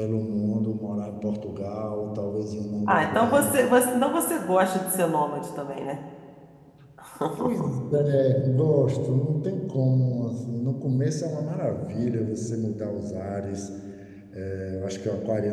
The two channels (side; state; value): both; identical; correlation 1.00